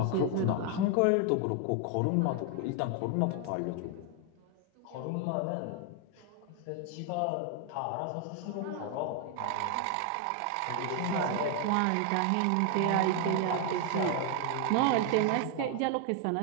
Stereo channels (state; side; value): different; both; correlation 0.01